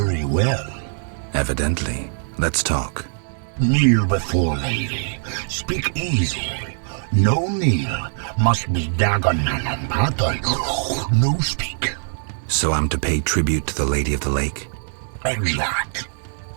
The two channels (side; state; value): left; silent; digital silence